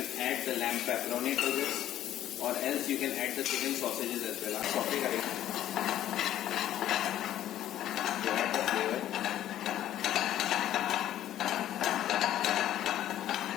add the lamb pepperoni to this, और else you can add the chicken sausages as well. आप सॉटे करेंगे to add the flavor.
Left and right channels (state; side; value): quieter; right; 12.3 dB